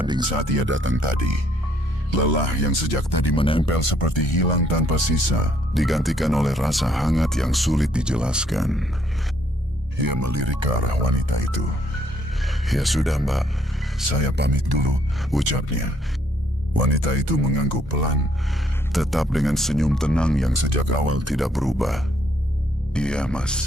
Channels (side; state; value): both; normal; correlation 0.68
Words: saat ia datang tadi. Lelah yang sejak tadi menempel seperti hilang tanpa sisa, digantikan oleh rasa hangat yang sulit dijelaskan. Ia melirik ke arah wanita itu. "Ya sudah, Mbak, saya pamit dulu," ucapnya. Wanita itu mengangguk pelan, tetap dengan senyum tenang yang sejak awal tidak berubah. "Iya,